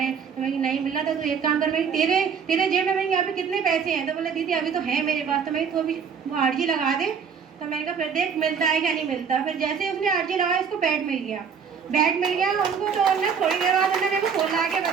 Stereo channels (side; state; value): left; quieter; 6.6 dB